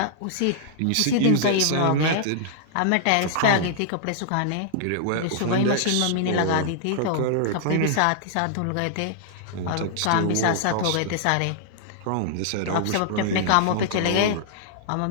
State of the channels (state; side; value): different; both; correlation -0.01